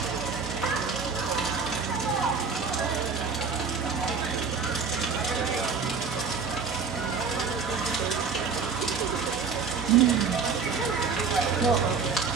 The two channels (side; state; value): left; quieter; 5.4 dB